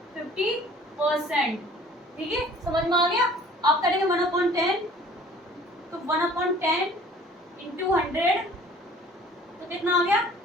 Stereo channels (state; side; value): normal; both; correlation 0.51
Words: 50%। ठीक है, समझ में आ गया? आप करेंगे 1/10, तो 1/10 इंटू 100 तो कितना आ गया